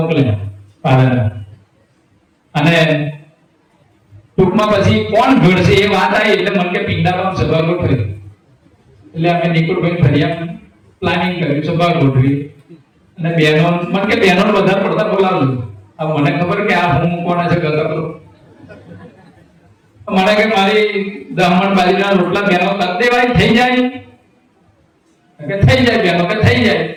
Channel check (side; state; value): both; identical; correlation 1.00